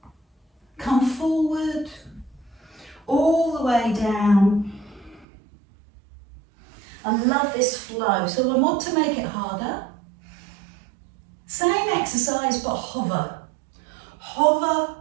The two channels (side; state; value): left; drops out; at 5.2 s